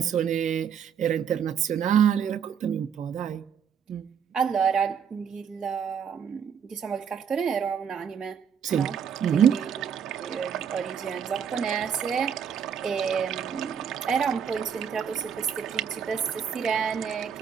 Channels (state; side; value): quieter; left; 7.6 dB